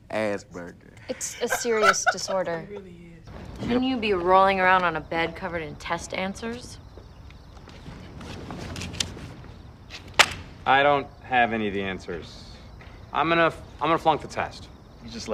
Asperger. It's a serious disorder. It really is. Shouldn't you be rolling around on a bed covered in test answers? I don't have any of the answers. I'm gonna flunk the test. You just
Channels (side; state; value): both; identical; correlation 1.00